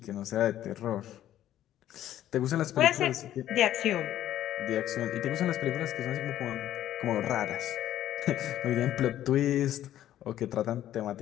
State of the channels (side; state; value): right; quieter; 12.3 dB